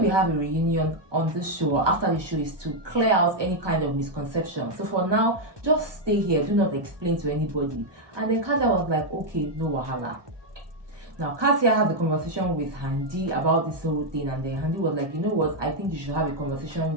we have a reunion on this show or after the show is to clear out any kind of misconception. So for now, just stay here. Do not explain to anybody. And then Kassia was like, okay, no wahala. Now, Kassia had a conversation with Handy about this whole thing, and then Handy was like, you know what, I think you should have a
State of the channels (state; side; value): late; left; 1.2 ms